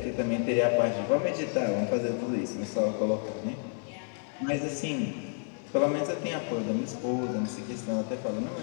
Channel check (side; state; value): right; silent; 58 dB below the other